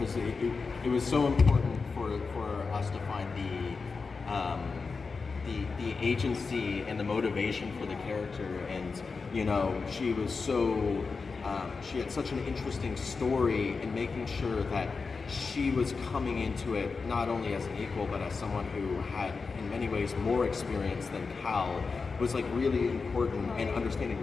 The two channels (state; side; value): quieter; right; 4.6 dB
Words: it was so important for us to find the agency and the motivation for the character, and she was so she had such an interesting story, and making sure that she was coming into it not only as an equal but as someone who had in many ways more experience than Cal was like really important, and